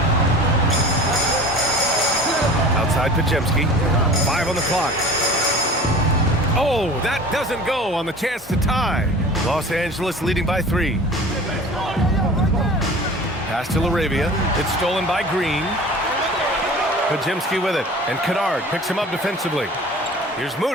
Outside Pajemski. 5 on the clock. Oh, that doesn't go on the chance to tie. Los Angeles leading by 3. Pass to LaRavia. It's stolen by Green. Pajemski with it. And Kennard picks him up defensively. Here's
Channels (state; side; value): normal; both; correlation 0.41